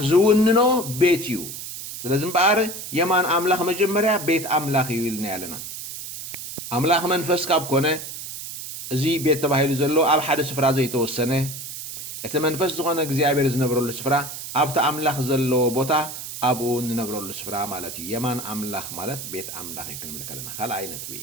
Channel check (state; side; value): noise; right; hiss, 9 dB below the sound